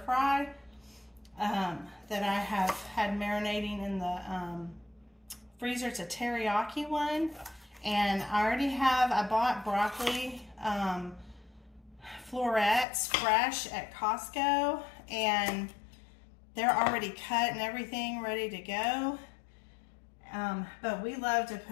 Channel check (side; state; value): right; drops out; at 12.9 s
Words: fry that I have had marinating in the freezer. It's a teriyaki one. And I bought broccoli florets fresh at Costco, and they're already cut and everything ready to go. But we love to